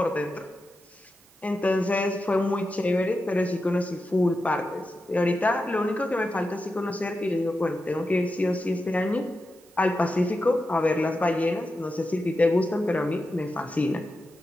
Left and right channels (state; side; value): noise; right; hiss, 29 dB below the sound